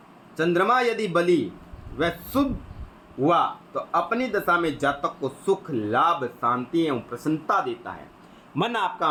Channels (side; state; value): both; identical; correlation 1.00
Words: चंद्रमा यदि बली व शुभ हुआ तो अपनी दशा में जातक को सुख, लाभ, शांति एवं प्रसन्नता देता है। मन आपका